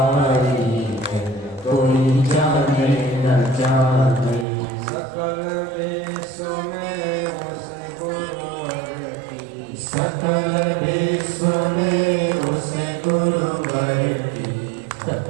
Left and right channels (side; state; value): left; drops out; at 4.5 s